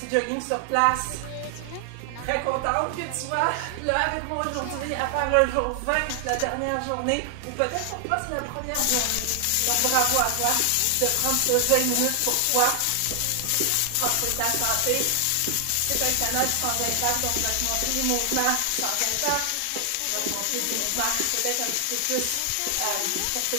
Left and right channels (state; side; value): different; both; correlation 0.00